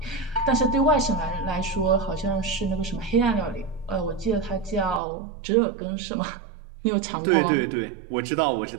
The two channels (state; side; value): drops out; left; at 5.0 s